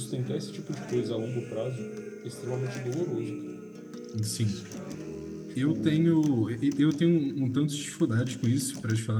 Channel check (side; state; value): both; identical; correlation 1.00